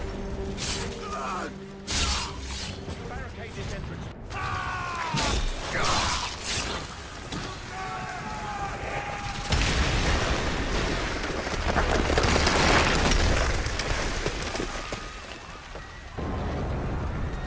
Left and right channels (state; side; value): identical; both; correlation 1.00